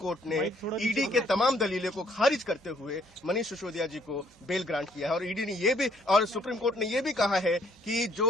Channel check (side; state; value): both; normal; correlation 0.66